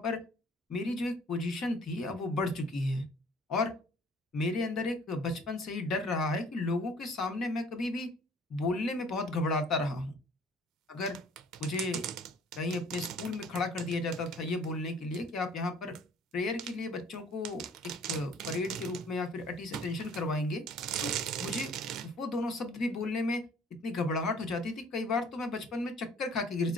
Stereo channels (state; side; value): normal; both; correlation 0.54